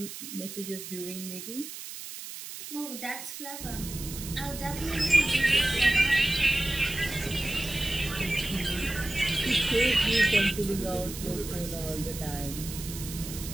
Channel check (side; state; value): right; noise; hiss, 10 dB below the sound